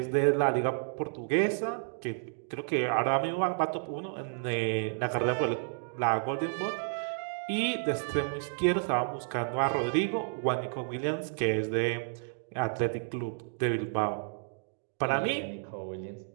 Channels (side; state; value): left; silent; digital silence